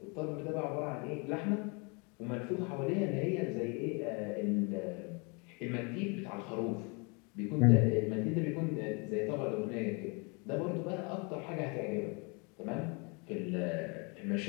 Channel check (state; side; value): quieter; right; 32.2 dB